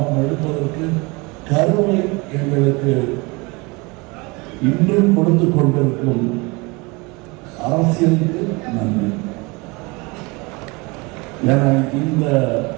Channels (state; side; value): quieter; left; 26.4 dB